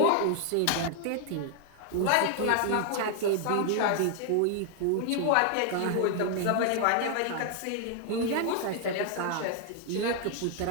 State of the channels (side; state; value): both; different; correlation 0.00